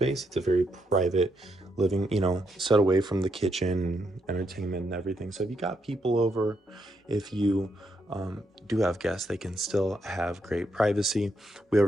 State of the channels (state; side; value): normal; both; correlation 0.79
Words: It's a very private living, you know, set away from the kitchen, entertainment and everything. So if you got people over, if you do have guests, they can still have great privacy. We